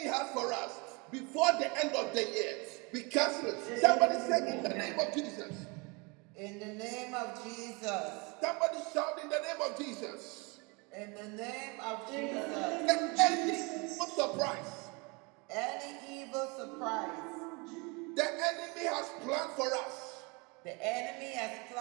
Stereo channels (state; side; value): quieter; left; 28.9 dB